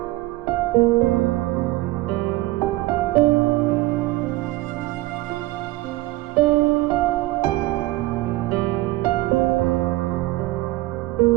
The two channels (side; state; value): left; quieter; 18.9 dB